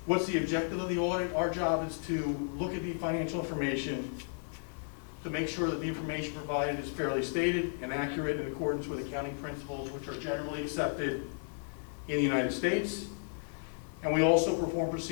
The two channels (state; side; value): silent; right; 55 dB below the other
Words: What's the objective of the audit? Our job is to look at the financial information to make sure that the information provided is fairly stated and accurate in accordance with accounting principles which are generally accepted in the United States. And we also perform